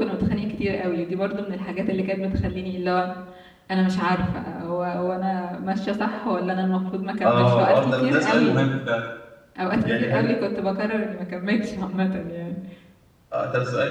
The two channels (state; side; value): identical; both; correlation 1.00